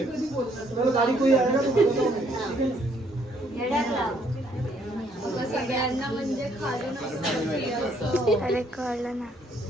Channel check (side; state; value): both; normal; correlation 0.67